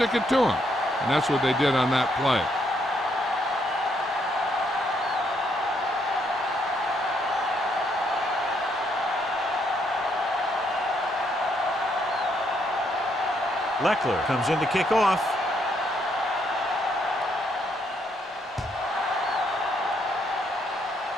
it to them. And that's what they did on that play. Leckler comes in to kick off.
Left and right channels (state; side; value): normal; both; correlation 0.73